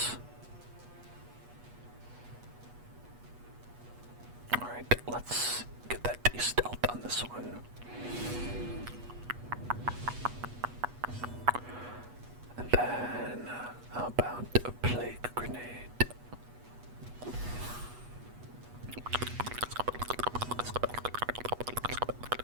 Alright, let's get that de-stealth on this one. And then, how about a plague grenade?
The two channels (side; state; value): left; late; 8.2 ms